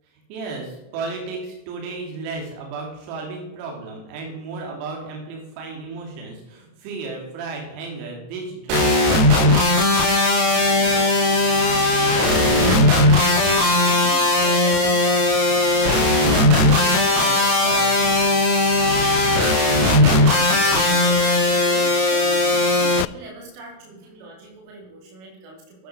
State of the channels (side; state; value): left; late; 32 ms